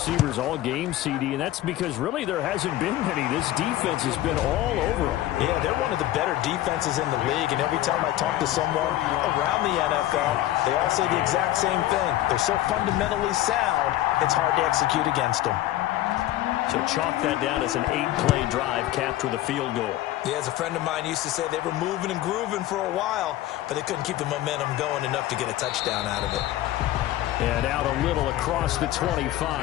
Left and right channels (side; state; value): right; quieter; 14.5 dB